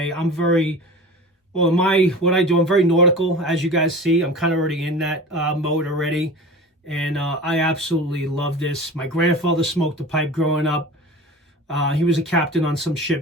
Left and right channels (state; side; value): normal; both; correlation 0.36